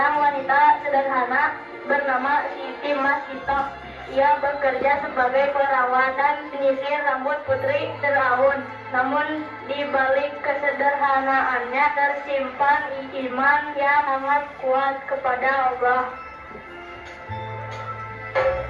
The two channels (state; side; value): identical; both; correlation 1.00